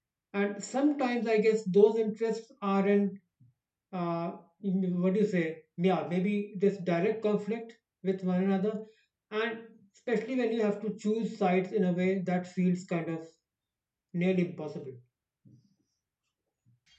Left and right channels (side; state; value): both; identical; correlation 1.00